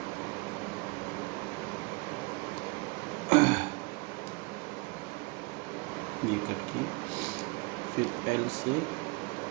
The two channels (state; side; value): quieter; left; 27.9 dB